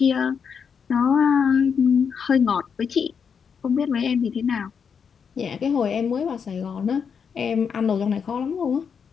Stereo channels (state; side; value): quieter; right; 6.6 dB